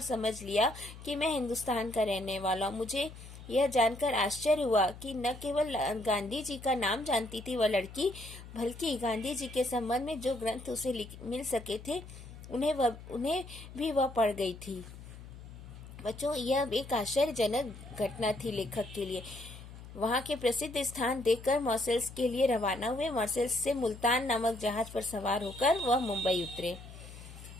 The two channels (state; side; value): noise; left; hum, 15 dB below the sound